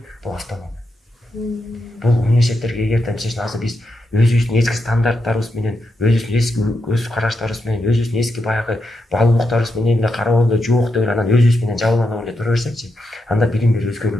бул автономия. Бул университеттерге эгерде мисалы азыр биз өзүбүздүн эски стандарттарыбыз менен, өзүбүздүн эски көз караштарыбыз менен, өзүбүздүн эски баягы баалуулуктарыбыз менен эле карап эле жок деп анан өзүбүз менен жабыланып эле тура берсекчи, анда билим берүү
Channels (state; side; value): normal; both; correlation 0.85